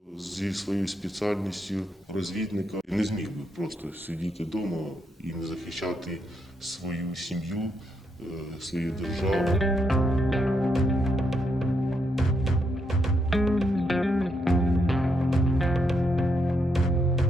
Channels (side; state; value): both; normal; correlation 0.79